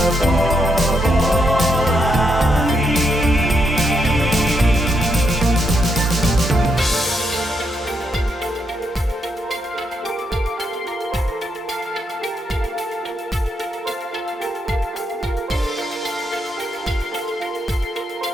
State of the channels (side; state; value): both; normal; correlation 0.78